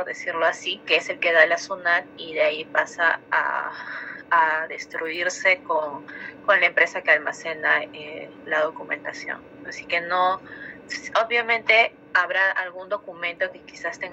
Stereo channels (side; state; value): both; identical; correlation 1.00